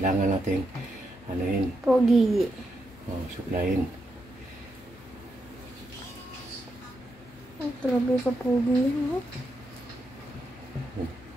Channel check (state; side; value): normal; both; correlation 0.83